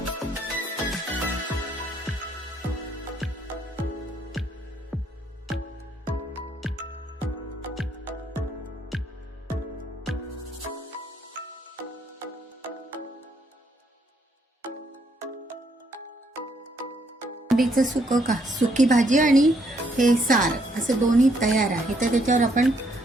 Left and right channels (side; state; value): both; normal; correlation 0.71